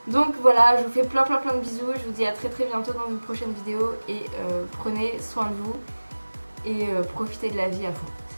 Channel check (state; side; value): inverted; both; correlation -1.00